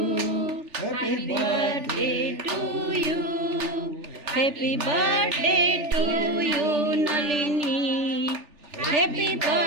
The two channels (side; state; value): left; late; 3.4 ms